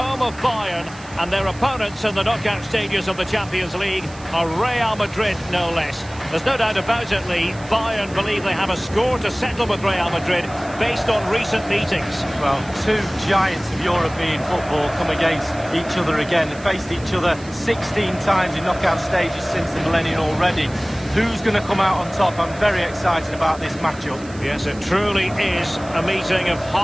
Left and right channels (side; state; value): right; noise; hiss, 21 dB below the sound